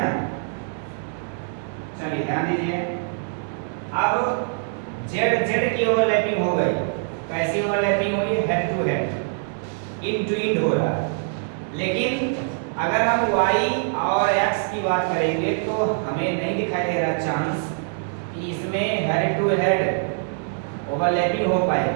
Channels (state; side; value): silent; left; digital silence